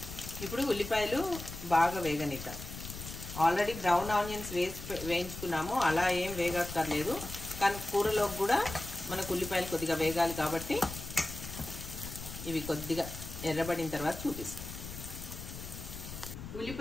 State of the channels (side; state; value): left; noise; rumble, 10 dB below the sound